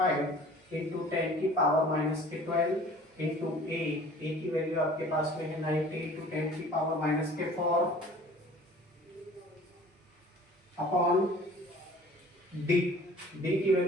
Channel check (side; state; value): both; normal; correlation 0.48